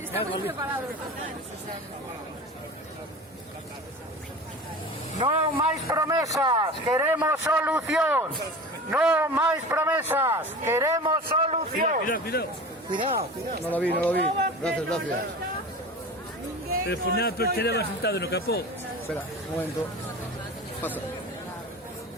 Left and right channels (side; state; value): both; normal; correlation 0.34